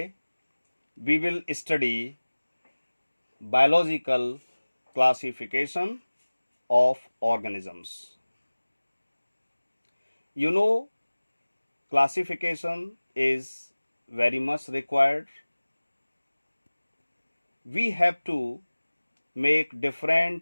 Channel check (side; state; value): both; inverted; correlation -1.00